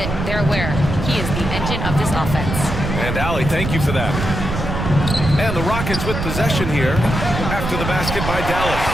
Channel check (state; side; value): noise; right; rumble, 4 dB below the sound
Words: they're aware. He is the engine of this offense. And Allie, thank you for that. And the Rockets with possession here after the basket by Dallas.